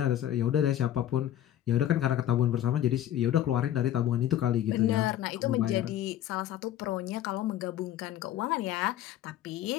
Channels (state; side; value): quieter; right; 12.0 dB